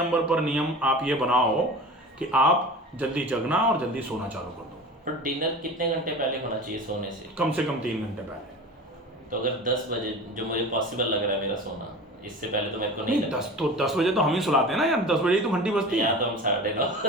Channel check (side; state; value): both; normal; correlation 0.35